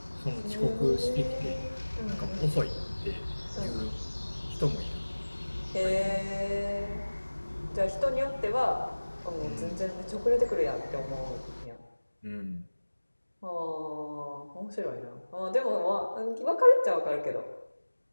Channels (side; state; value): both; inverted; correlation -1.00